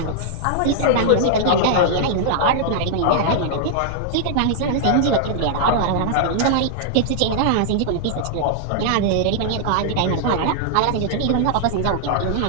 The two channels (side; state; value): both; different; correlation -0.01